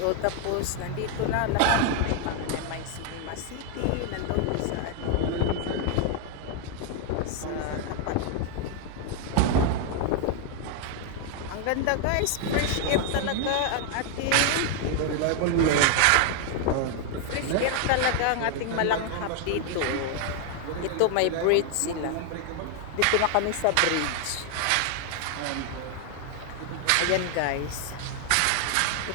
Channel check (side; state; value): both; different; correlation 0.00